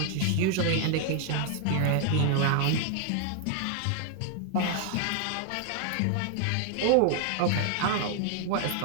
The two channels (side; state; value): both; different; correlation 0.00